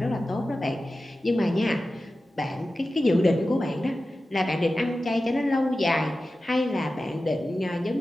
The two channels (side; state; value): both; normal; correlation 0.94